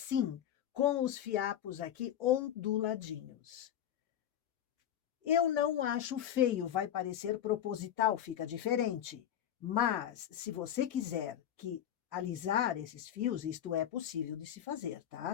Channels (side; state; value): right; quieter; 10.4 dB